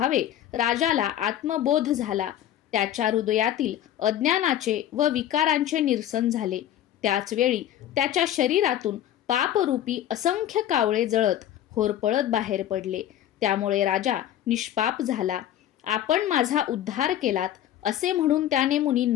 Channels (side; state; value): right; quieter; 11.6 dB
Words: राजाला आत्मबोध झाला. त्याच्या हृदयातील अज्ञानाचे व विकारांचे निरसन झाले. त्याच वेळी त्याच्या शरीरातून पापरूपी असंख्य कावळे जळत होरपळत बाहेर पडले. त्यामुळे राजा निष्पाप झाला. आपण माझा उद्धार केलात असे म्हणून त्याने